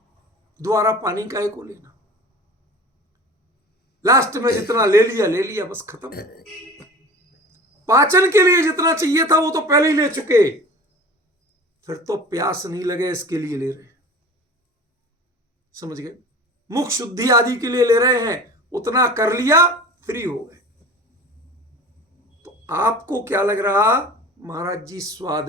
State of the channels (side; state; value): both; normal; correlation 0.39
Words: दोबारा पानी काहे को लेना? लास्ट में जितना ले लिया बस खत्म। पाचन के लिए जितना चाहिए था वो तो पहले ही ले चुके, फिर तो प्यास नहीं लगे इसके लिए ले रहे। समझ गए? मुख शुद्धि आदि के लिए ले रहे हैं, उतना कर लिया, फ्री हो गए। तो आपको क्या लग रहा? महाराज जी